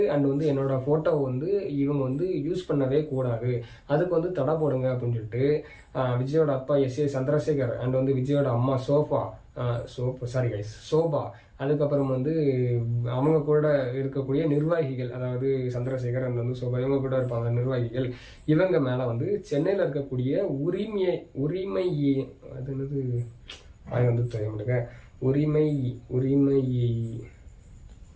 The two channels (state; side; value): identical; both; correlation 1.00